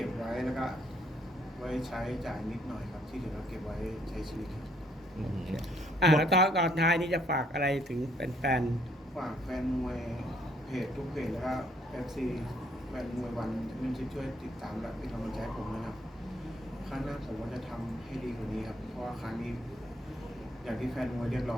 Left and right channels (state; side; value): normal; both; correlation 0.66